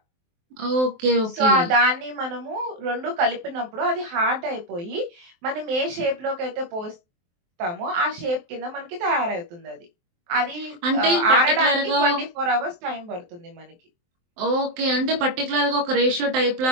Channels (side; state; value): left; late; 23 ms